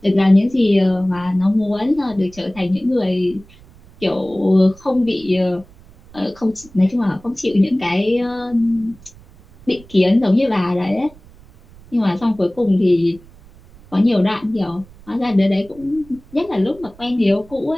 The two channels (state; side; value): noise; right; rumble, 24 dB below the sound